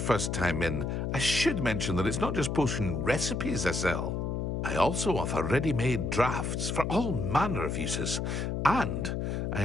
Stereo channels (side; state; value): left; noise; hum, 1 dB below the sound